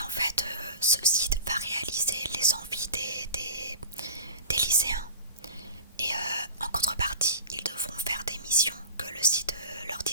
en fait, ce site va réaliser les envies des lycéens. Et en contrepartie, ils devront faire des missions que le site leur dit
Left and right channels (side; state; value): both; inverted; correlation -0.37